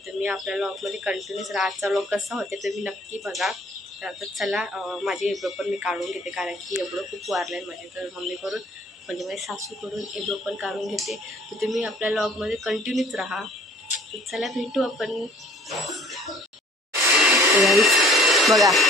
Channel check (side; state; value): both; normal; correlation 0.55